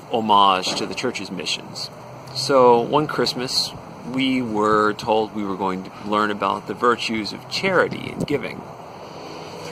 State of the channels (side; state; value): both; identical; correlation 1.00